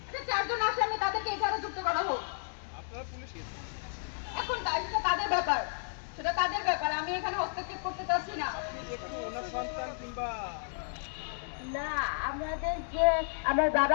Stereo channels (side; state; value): right; silent; digital silence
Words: যে 4 জন আসামি তাদেরকে এখানে যুক্ত করা হোক। আপনারা পুলিশ এখন সেটা তাদের ব্যাপার, সেটা তাদের ব্যাপার, আমি এখানে হস্তক্ষেপ করতে চাচ্ছি না। একটু ওনার সন্তান কিংবা না, আমাদের যে আমার